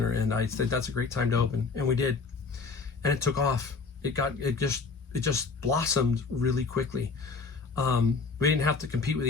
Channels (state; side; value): quieter; right; 4.5 dB